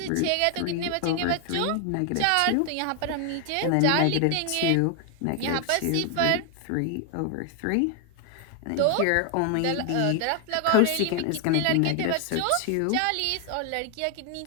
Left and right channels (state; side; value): different; both; correlation 0.00